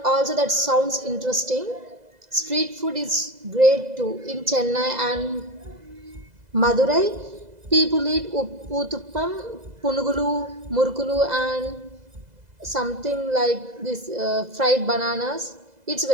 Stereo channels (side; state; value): left; late; 2.0 ms